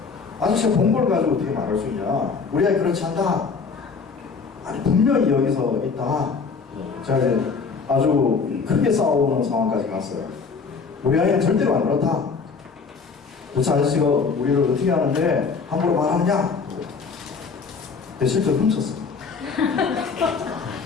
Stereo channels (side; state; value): right; quieter; 5.1 dB